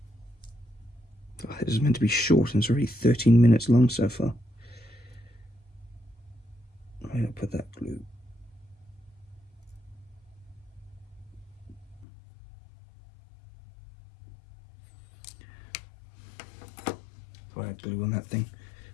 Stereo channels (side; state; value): right; drops out; at 12.1 s